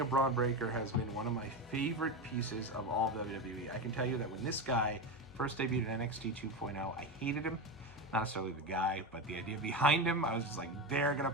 of Bron Breakker has been one of my favorite pieces of all of WWE. I can tell you that when this guy first debuted in NXT 2.0, I hated him. Not necessarily the guy, but the idea behind him. I was just like, they're going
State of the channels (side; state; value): both; normal; correlation 0.18